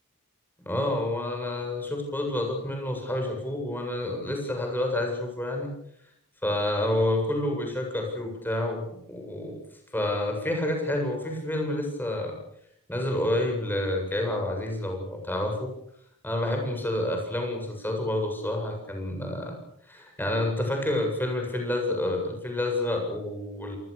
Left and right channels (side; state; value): both; normal; correlation 0.57